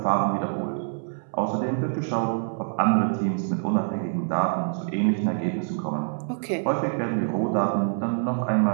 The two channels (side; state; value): left; silent; 61 dB below the other